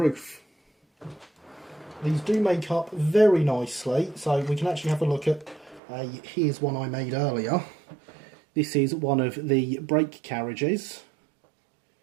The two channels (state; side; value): drops out; left; at 5.8 s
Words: These do make up very nicely, so we can actually have a look at here's one I made earlier. This is one of the brake carriages,